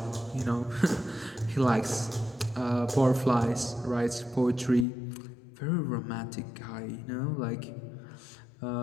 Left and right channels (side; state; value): right; drops out; at 4.9 s